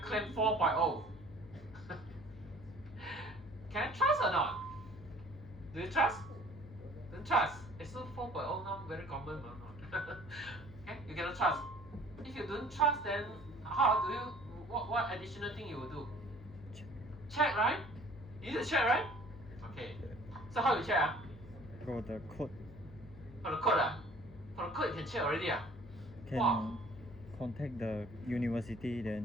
claimed 4.0. Can I trust or not? Do you trust? Don't trust. It's not 4.0 now, very common. Okay, you cannot trust. If you don't trust, then how do you? What additional thing you will do? Check, right? You need to check, right? Okay. So how you check? Got the code. For the code, for the code you can check already. Can contact the university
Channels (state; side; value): noise; left; hum, 17 dB below the sound